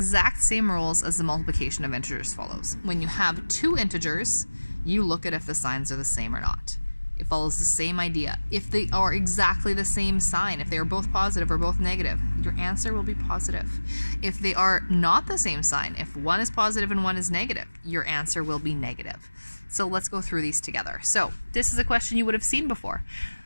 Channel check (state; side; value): inverted; both; correlation -1.00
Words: same rules as the multiplication of integers follows. When you have two integers, you look at if the signs are the same or not. It follows the same idea. If they are exactly the same sign, if they are both positive or both negative, your answer will be positive. If they are not the same sign, if one is positive and one is negative, your answer will be negative. So let's go through these together. So this is a question you would have seen before.